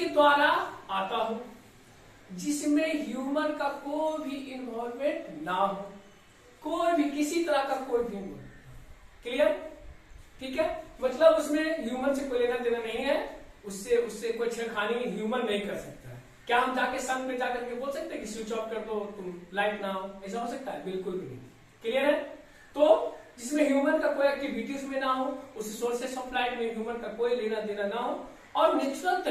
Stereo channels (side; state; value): both; identical; correlation 1.00